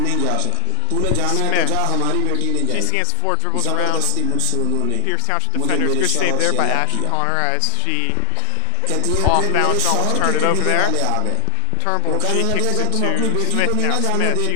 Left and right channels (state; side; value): different; both; correlation 0.00